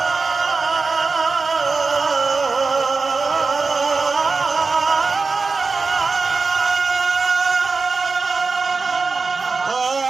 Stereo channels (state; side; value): quieter; left; 4.3 dB